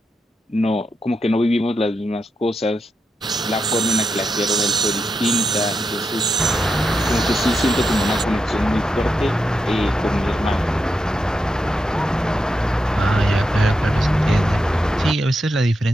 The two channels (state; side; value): normal; both; correlation 0.85